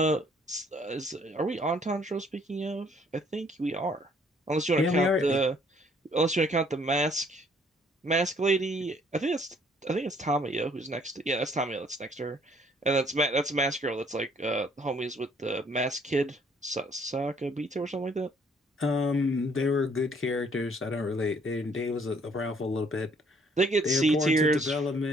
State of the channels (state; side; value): normal; both; correlation 0.62